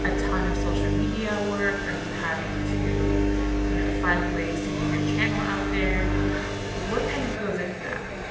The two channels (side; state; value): both; identical; correlation 1.00